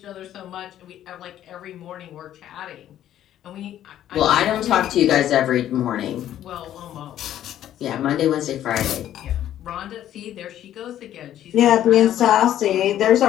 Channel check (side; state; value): right; quieter; 11.7 dB